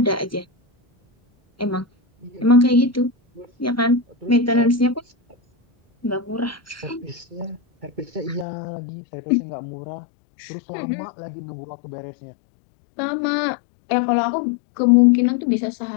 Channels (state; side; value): drops out; right; at 8.5 s